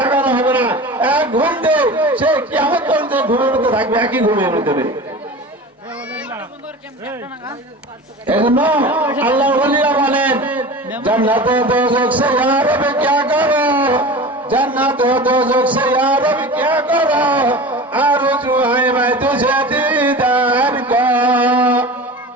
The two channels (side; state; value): both; normal; correlation 0.34